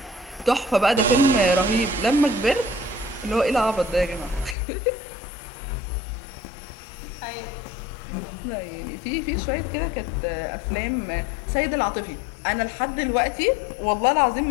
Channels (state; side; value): drops out; right; at 4.5 s